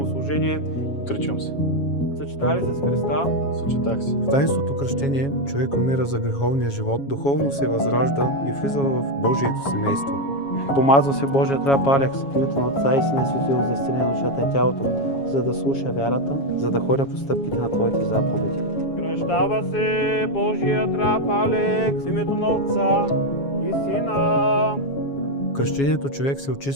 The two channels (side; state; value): right; late; 7.2 ms